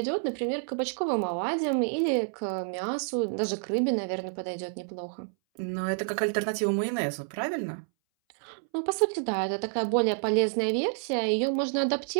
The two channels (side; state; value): left; silent; 59 dB below the other